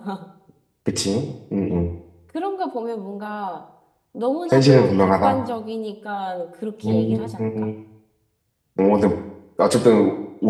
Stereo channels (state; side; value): identical; both; correlation 1.00